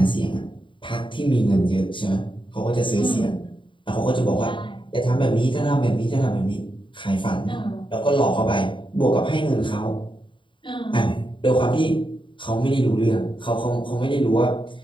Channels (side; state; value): right; late; 0.24 ms